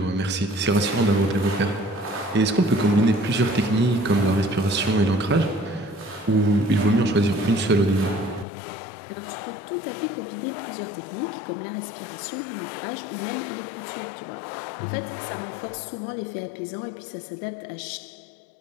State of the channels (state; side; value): drops out; right; at 8.5 s